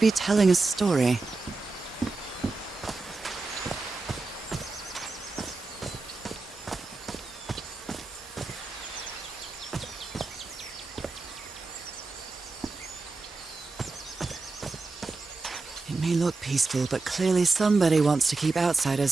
telling a story. It may look peaceful, but clearly somebody wants to keep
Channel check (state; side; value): quieter; left; 3.7 dB